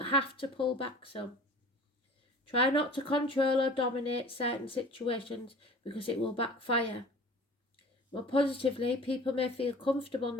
to pull back some. Try not to control or dominate certain situations because it will backfire. More positively, people may feel comfortable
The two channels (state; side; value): normal; both; correlation 0.43